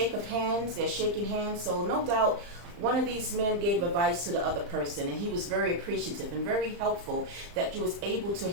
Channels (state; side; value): late; left; 35 ms